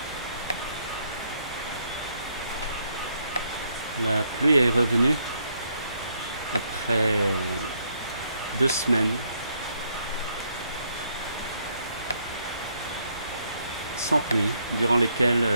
La pluie est revenue après 2 semaines sans pluie, durant lesquelles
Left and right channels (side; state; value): both; inverted; correlation -0.72